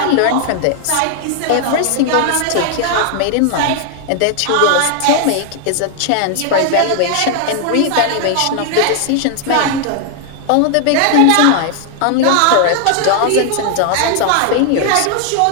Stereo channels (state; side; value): different; both; correlation 0.00